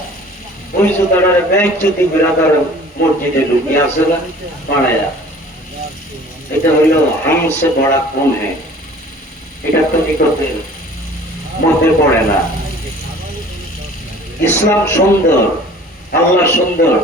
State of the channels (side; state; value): both; normal; correlation 0.48